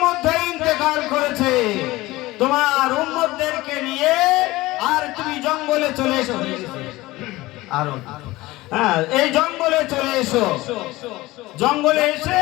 মধ্যে ইন্তেকাল করেছে। তোমার উম্মতদেরকে নিয়ে আর তুমি জঙ্গলে চলে এসো। আর এই জঙ্গলে চলে এসো। জঙ্গলে এসে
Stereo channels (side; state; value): right; quieter; 19.1 dB